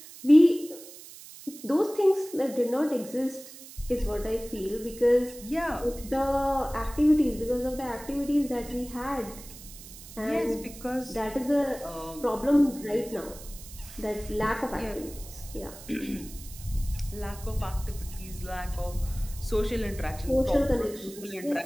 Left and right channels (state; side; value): noise; right; hiss, 16 dB below the sound